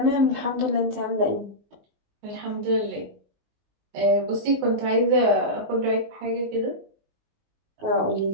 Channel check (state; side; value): late; left; 19 ms